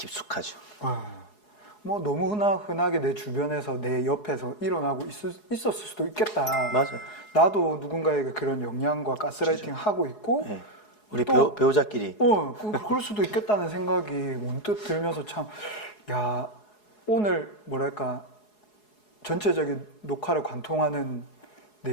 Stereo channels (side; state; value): right; late; 4.7 ms